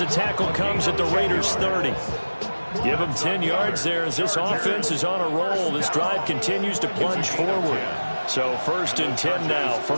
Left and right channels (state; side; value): inverted; both; correlation -1.00